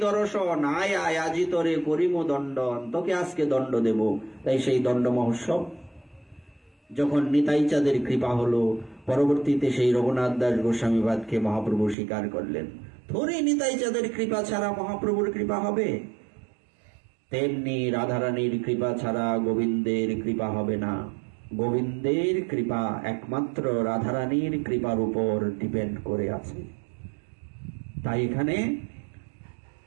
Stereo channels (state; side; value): drops out; left; at 12.0 s